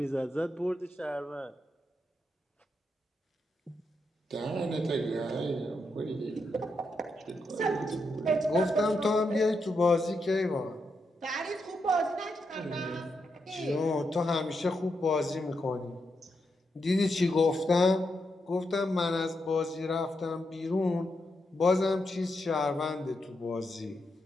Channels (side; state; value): both; normal; correlation 0.83